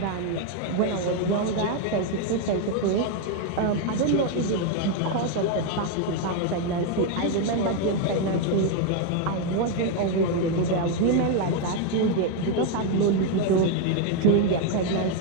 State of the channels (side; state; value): both; different; correlation 0.01